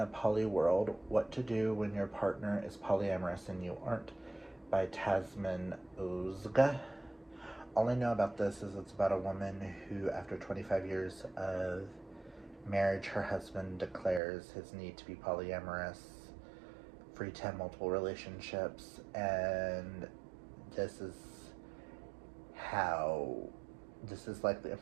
Poly World, What to Do When Your Partner is Polyamorous and You Aren't, by Tasmin Ozga. All I know about this is it's about a woman who, after 25 years of marriage, her husband declares his need to be polyamorous, free to have multiple relationships, and this is like the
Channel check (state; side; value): drops out; left; at 14.2 s